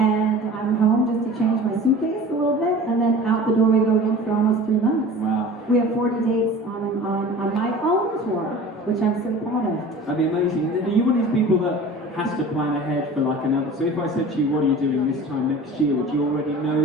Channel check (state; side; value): normal; both; correlation 0.40